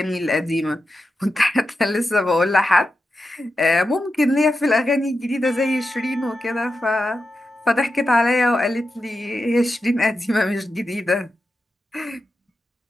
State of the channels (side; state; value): both; normal; correlation 0.89